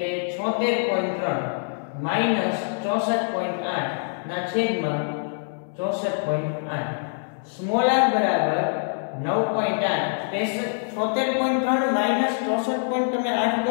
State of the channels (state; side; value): silent; right; digital silence